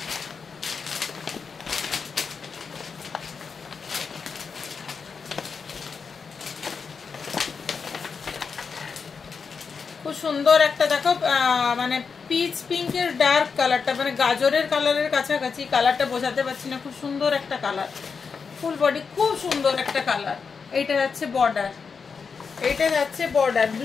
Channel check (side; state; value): right; quieter; 5.5 dB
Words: খুব সুন্দর একটা দেখো মানে পিচ পিঙ্কের ডার্ক কালারটা, মানে গাজরের কালারের কাছাকাছি, কালারটা বোঝাতে পারছি না, খুব সুন্দর একটা কালার, ফুল বডি খুব সুন্দর একটা কালার। এইটা যাচ্ছে বর্ডার, এইটা যাচ্ছে বর্ডার,